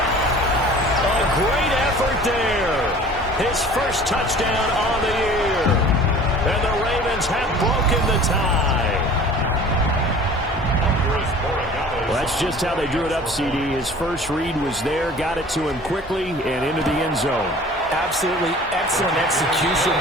A great effort there. His first touchdown on the year. And the Ravens have broken the tie. Well, that's just how they drew it up, CD. His first read was there, got it to him quickly, and into the end zone. Absolutely excellent execution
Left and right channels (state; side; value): normal; both; correlation 0.45